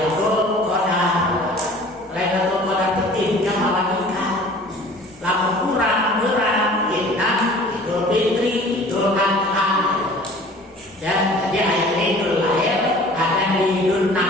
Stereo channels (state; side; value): normal; both; correlation 0.47